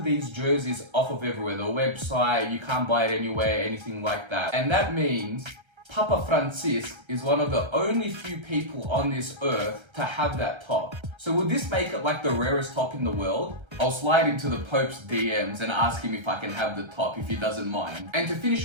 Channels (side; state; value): left; late; 1.3 ms